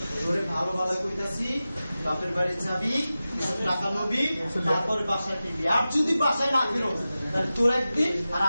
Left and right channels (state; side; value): inverted; both; correlation -0.95